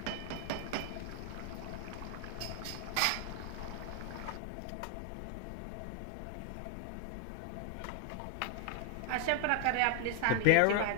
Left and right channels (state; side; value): different; both; correlation 0.00